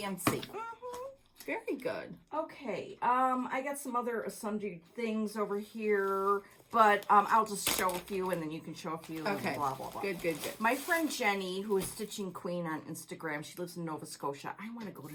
Very good. Okay, I got some other sundry things over here, but I'll just show a few, and then you can show a few. Okay. And blah blah blah. Good. My friend Jenny, who is Stitching Queen on Instagram, she lives in Nova Scotia. I want to go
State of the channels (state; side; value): identical; both; correlation 1.00